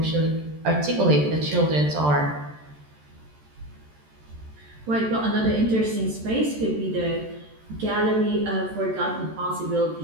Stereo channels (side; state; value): left; late; 14 ms